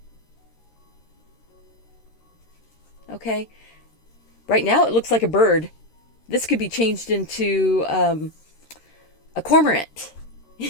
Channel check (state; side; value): late; right; 13 ms